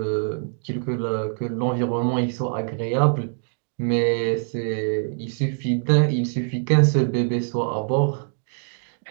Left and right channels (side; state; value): left; silent; digital silence